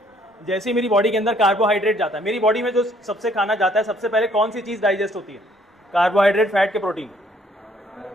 जैसे ही मेरी बॉडी के अंदर कार्बोहाइड्रेट जाता है, मेरी बॉडी में जो सबसे खाना जाता है सबसे पहले कौन सी चीज़ डाइजेस्ट होती है? कार्बोहाइड्रेट, फैट के प्रोटीन।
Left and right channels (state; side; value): normal; both; correlation 0.63